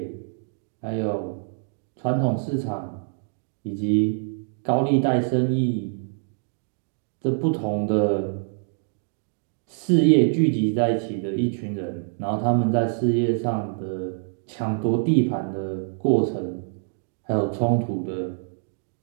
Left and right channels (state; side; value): silent; left; digital silence